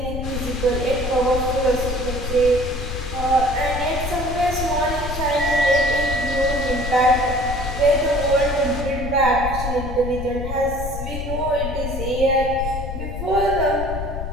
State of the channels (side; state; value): left; noise; rumble, 6 dB below the sound